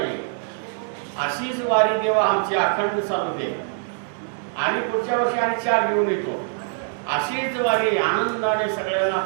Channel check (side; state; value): left; silent; 61 dB below the other